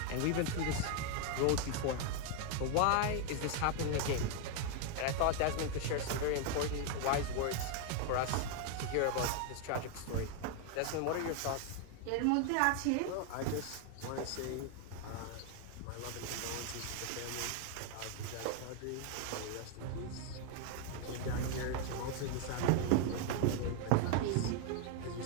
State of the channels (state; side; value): different; both; correlation 0.01